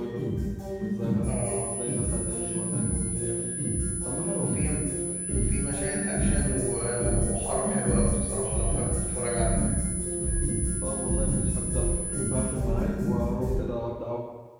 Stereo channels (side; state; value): both; identical; correlation 1.00